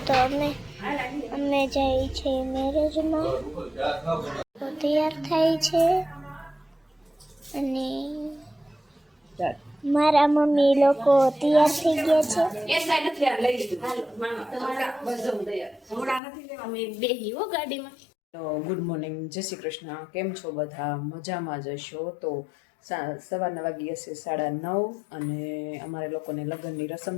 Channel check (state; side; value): drops out; right; at 16.2 s